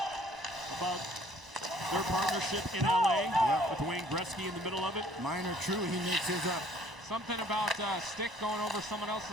about their partnership in LA with Wayne Gretzky in the middle of it. Minor true, he makes his up. Something about stick going over someone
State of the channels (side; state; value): both; normal; correlation 0.58